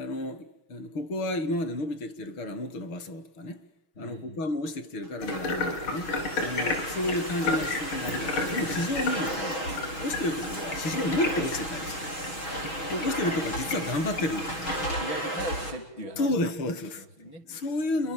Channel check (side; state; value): right; late; 6.2 ms